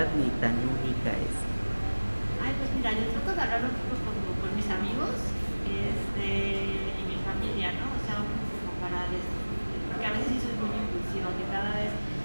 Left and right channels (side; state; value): both; inverted; correlation -1.00